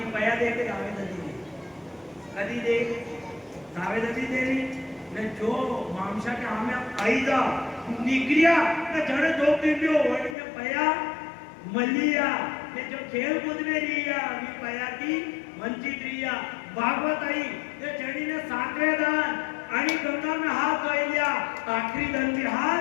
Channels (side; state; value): right; drops out; at 10.4 s